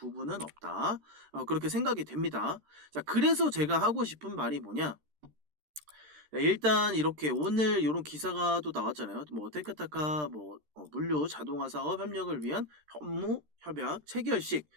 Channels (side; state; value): left; late; 13 ms